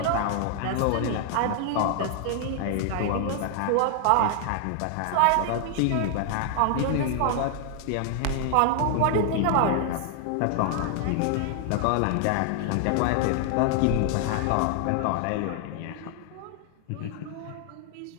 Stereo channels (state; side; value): different; both; correlation 0.00